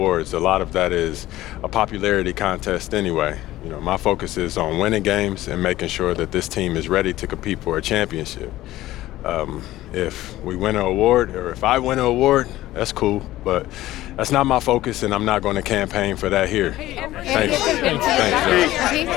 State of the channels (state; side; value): quieter; right; 15.7 dB